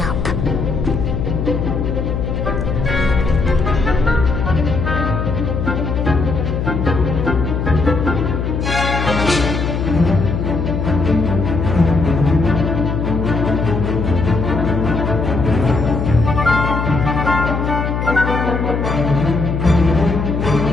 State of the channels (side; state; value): left; noise; hum, 2 dB below the sound